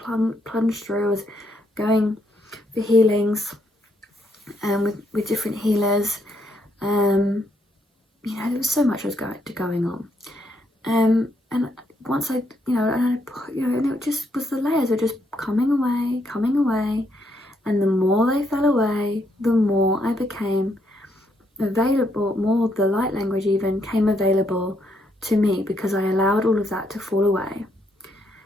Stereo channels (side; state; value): both; normal; correlation 0.75